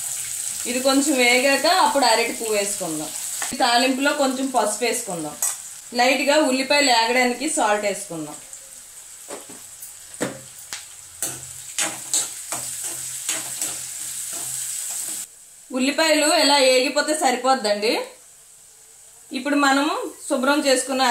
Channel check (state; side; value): identical; both; correlation 1.00